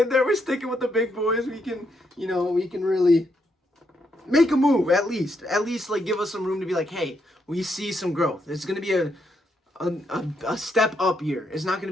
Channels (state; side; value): normal; both; correlation 0.78